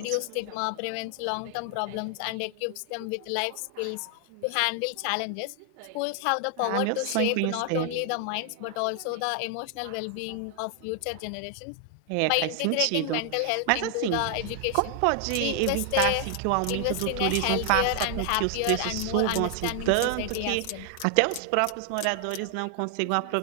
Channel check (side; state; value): both; different; correlation 0.00